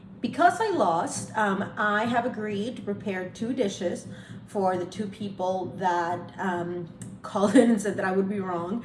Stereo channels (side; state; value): both; identical; correlation 1.00